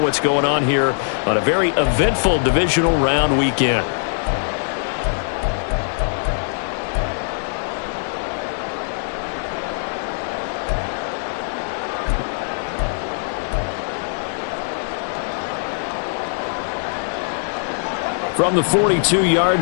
going on here on a very eventful divisional round weekend. From the 42-yard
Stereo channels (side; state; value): right; silent; digital silence